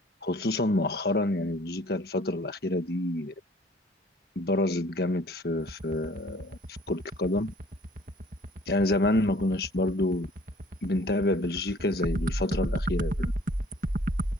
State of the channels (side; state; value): both; normal; correlation 0.54